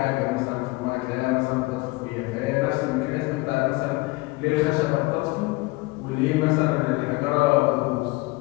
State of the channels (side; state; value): right; quieter; 23.5 dB